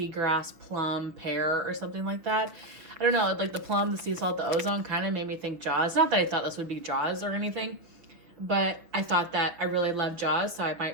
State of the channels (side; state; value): left; late; 6.3 ms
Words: plum, pear, or something like that. I don't know, like the plum, the sea salt, the ozone kind of made me think Jaws. Not that I thought this would be Jaws or anything, but I thought that I really love Jaws, so I